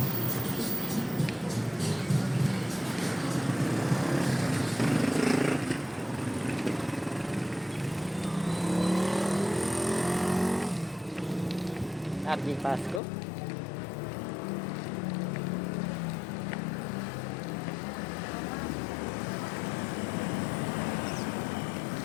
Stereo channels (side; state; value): right; drops out; at 13.0 s